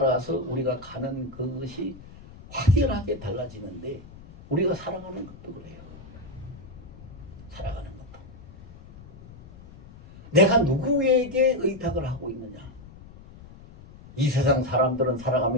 우리가 가는 그것이 확연하게 달라지는데, 우리가 살아가는 것도 그래요. 살아가는 것도. 내가 누구에게 의탁을 하고 있느냐. 이 세상 사람들은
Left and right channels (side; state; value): left; noise; rumble, 18 dB below the sound